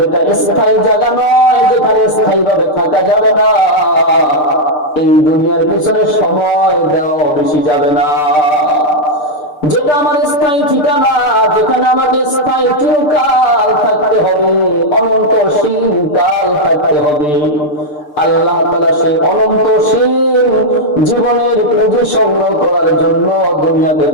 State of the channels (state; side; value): late; right; 6.7 ms